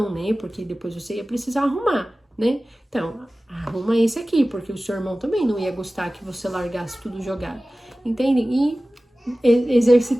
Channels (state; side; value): normal; both; correlation 0.97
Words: né? Porque depois você ia precisar arrumar, né? Então, arruma esse aqui, porque o seu irmão também não ia gostar que você largasse tudo jogado. Entendem? E